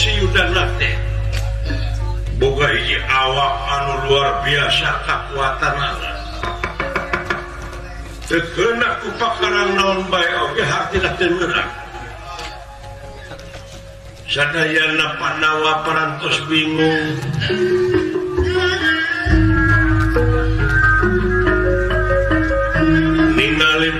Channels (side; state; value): both; identical; correlation 1.00